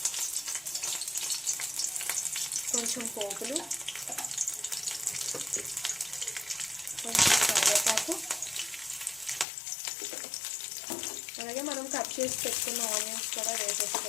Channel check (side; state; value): right; drops out; at 9.5 s